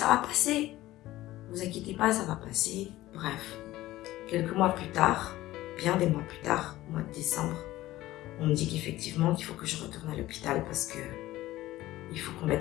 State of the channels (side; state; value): right; quieter; 16.3 dB